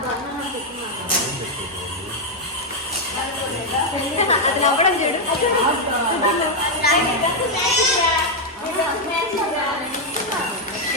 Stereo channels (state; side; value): normal; both; correlation 0.00